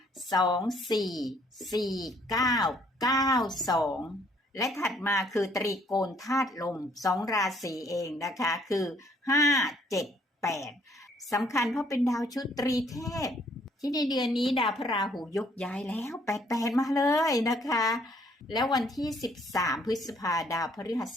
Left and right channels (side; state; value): both; normal; correlation 0.64